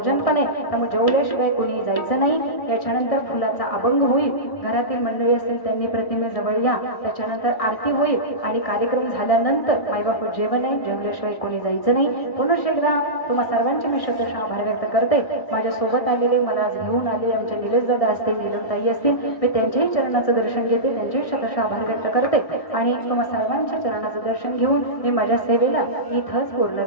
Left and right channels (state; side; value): late; right; 1.6 ms